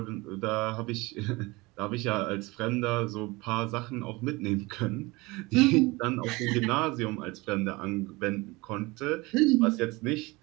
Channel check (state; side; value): quieter; left; 23.1 dB